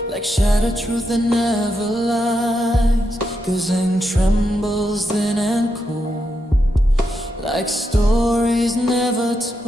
like shattered truth that never lies. Guzheng trembles thin and cold, like stories never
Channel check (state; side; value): normal; both; correlation 0.84